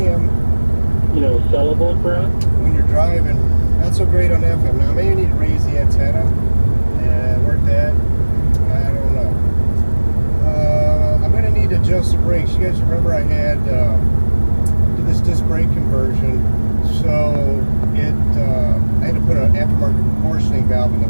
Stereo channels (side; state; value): both; inverted; correlation -1.00